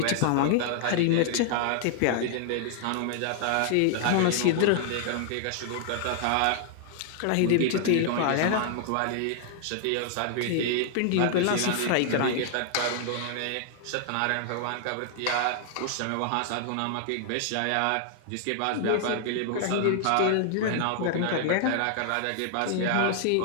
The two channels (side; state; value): both; different; correlation 0.00